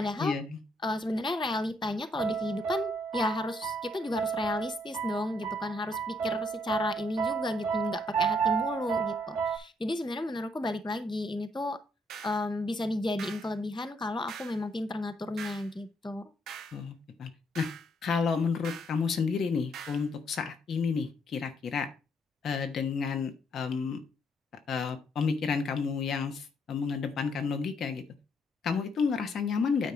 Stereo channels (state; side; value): normal; both; correlation 0.72